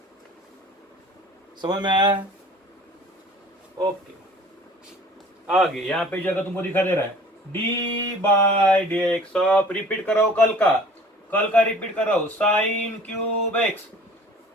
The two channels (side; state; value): both; normal; correlation 0.48